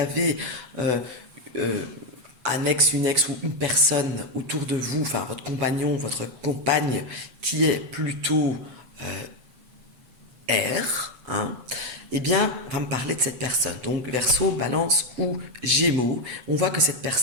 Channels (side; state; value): left; late; 7.9 ms